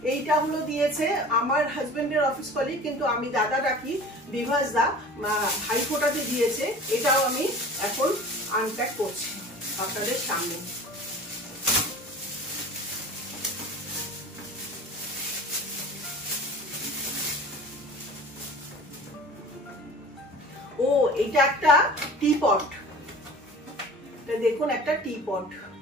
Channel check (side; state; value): both; normal; correlation 0.40